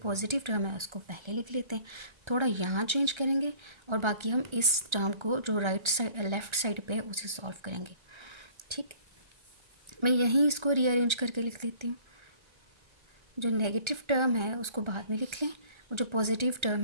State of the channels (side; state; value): left; late; 1.3 ms